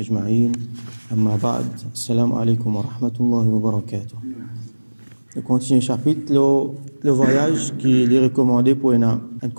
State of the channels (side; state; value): both; inverted; correlation -1.00